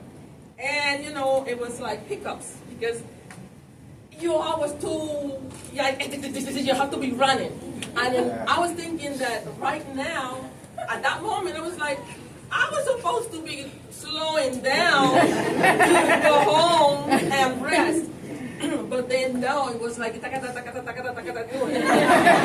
And it was like pickups because you always too, you have to be running. And then I was thinking that right now, at that moment, it was like, I was supposed to be slowing down to go home and rest. But then no, it was like, Ricardo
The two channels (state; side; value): identical; both; correlation 1.00